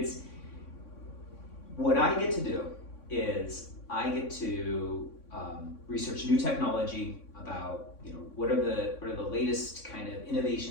what I get to do is I get to research new technology about what are the latest kind of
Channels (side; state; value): right; late; 3.6 ms